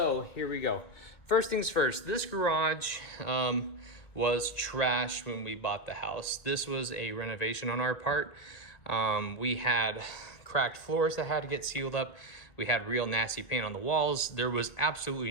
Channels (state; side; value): late; right; 1.9 ms